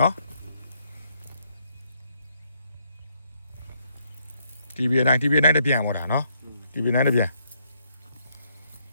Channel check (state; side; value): inverted; both; correlation -0.73